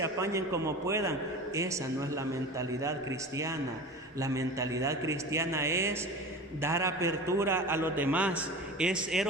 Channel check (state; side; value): normal; both; correlation 0.33